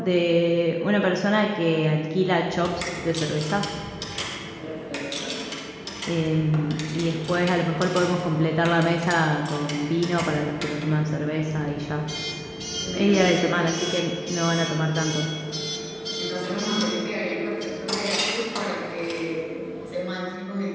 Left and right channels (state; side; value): identical; both; correlation 1.00